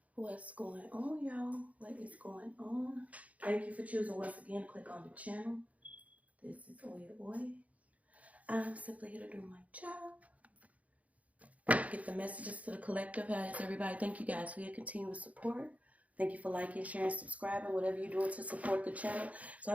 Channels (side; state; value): left; late; 0.069 ms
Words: What's going on, y'all? What is going on? Thank you for choosing once again to click on the channel. This is OYAOY. I'm simply here to do my job. Get the messages to the collective. How is everybody? Thank you guys for your continuous support. Thank you for liking, sharing, subscribing, whatever you're doing to support the channel. So I